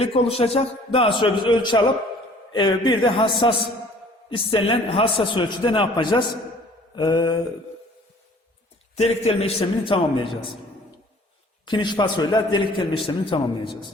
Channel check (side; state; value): both; normal; correlation 0.53